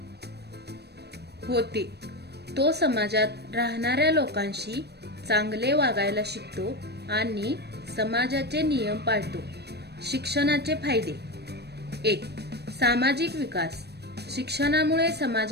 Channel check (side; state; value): left; late; 0.48 ms